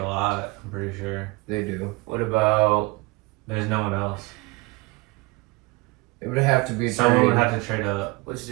lot. I'm pretty sure. They do. What about There's no one else. It would have to be a Someone trade. would have to trade up. what's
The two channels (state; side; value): quieter; left; 24.6 dB